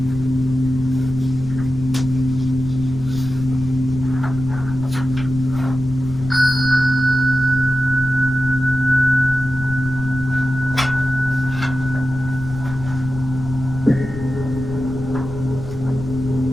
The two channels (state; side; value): noise; left; rumble, 11 dB below the sound